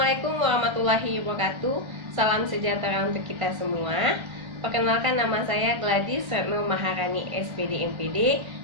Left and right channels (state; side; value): late; left; 1.5 ms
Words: warahmatullahi wabarakatuh. Salam sejahtera untuk kita semua. Perkenalkan, nama saya Gladys Retno Maharani, SPD MPD.